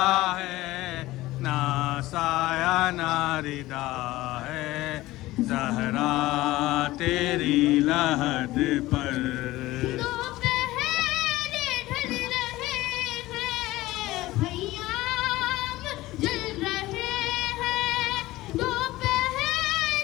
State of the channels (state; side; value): quieter; right; 17.7 dB